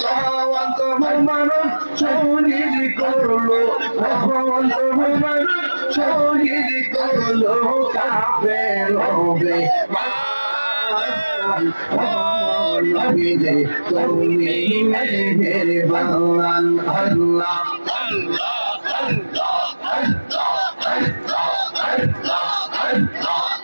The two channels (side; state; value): both; inverted; correlation -1.00